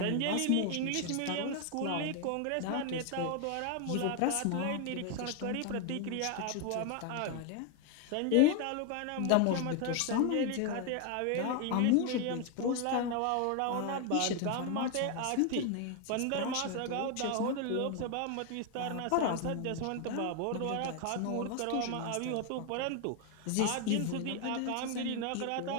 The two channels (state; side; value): different; both; correlation 0.01